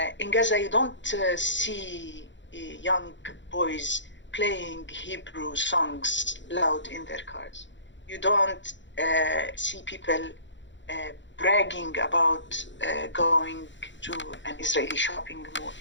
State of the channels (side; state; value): right; late; 0.54 ms